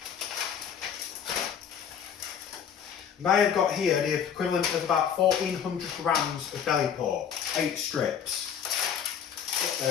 And I have got here the equivalent of about 1400 grams of belly pork, 8 strips. Get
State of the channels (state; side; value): quieter; right; 8.1 dB